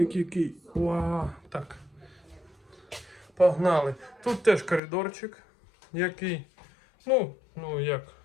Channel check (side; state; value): right; drops out; at 4.8 s